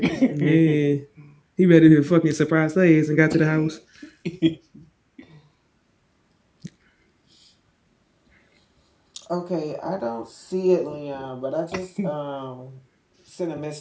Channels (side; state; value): both; identical; correlation 1.00